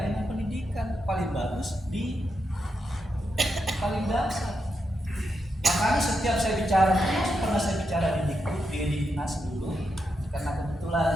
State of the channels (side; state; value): both; normal; correlation 0.84